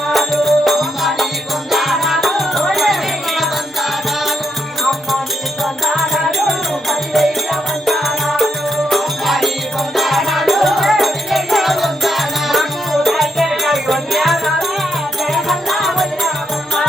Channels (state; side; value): normal; both; correlation 0.79